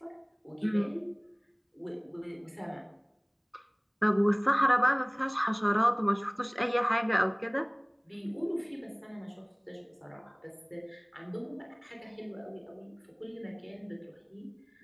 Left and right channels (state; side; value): identical; both; correlation 1.00